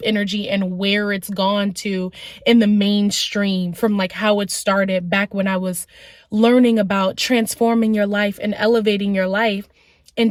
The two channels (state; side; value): identical; both; correlation 1.00